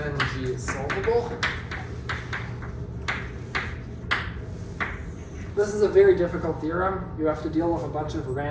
G is solvable. This is a very difficult theorem. You have to deal with a bunch of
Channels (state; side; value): identical; both; correlation 1.00